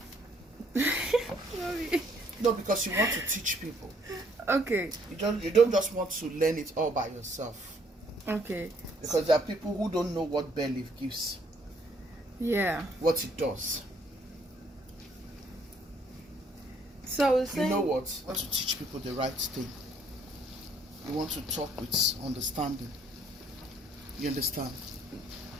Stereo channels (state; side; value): normal; both; correlation 0.65